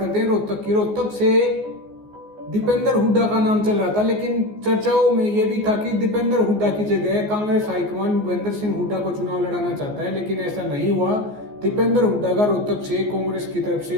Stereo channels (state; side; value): late; left; 14 ms